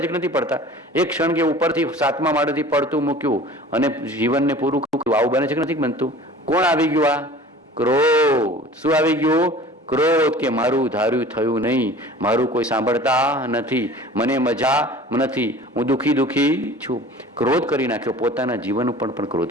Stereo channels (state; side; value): normal; both; correlation 0.44